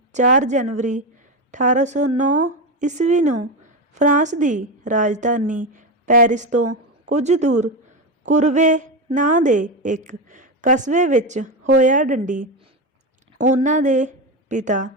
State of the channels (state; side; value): normal; both; correlation 0.15